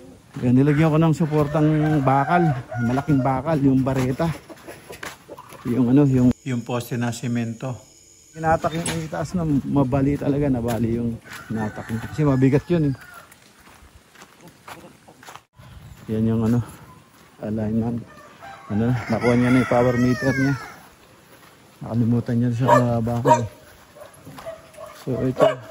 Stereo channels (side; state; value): both; identical; correlation 1.00